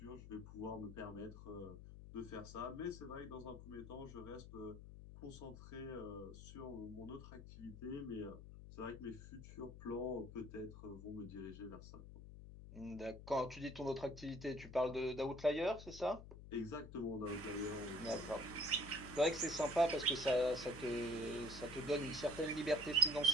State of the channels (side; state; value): left; noise; hum, 13 dB below the sound